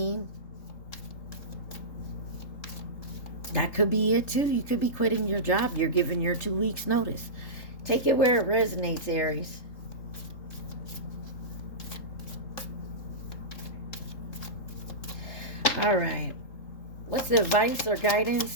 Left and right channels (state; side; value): late; right; 3.8 ms